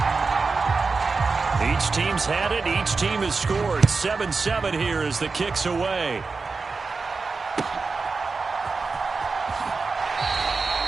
Each team's had it. Each team has scored. 7-7 here as the kick's away.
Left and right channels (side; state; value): left; quieter; 4.3 dB